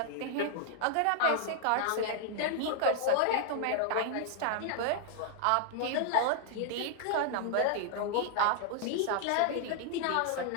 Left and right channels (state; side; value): different; both; correlation -0.01